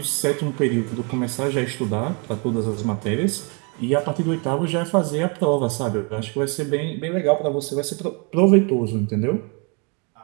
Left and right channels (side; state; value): left; quieter; 34.0 dB